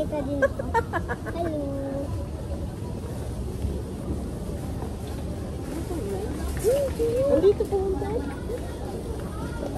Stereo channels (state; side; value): identical; both; correlation 1.00